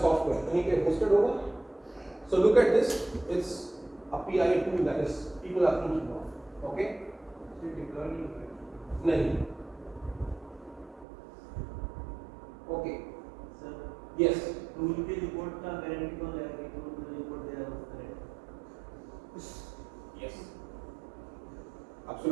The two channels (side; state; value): left; drops out; at 11.1 s